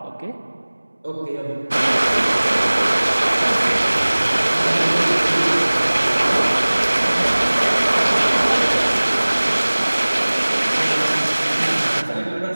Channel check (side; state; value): both; inverted; correlation -1.00